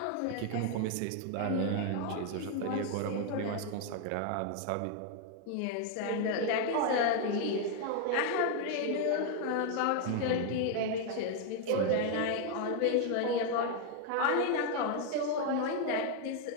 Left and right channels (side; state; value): both; different; correlation 0.00